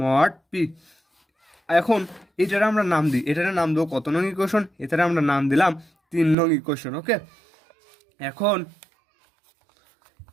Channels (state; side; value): drops out; left; at 6.4 s